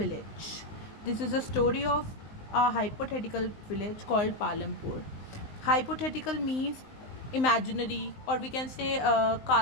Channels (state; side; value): late; right; 19 ms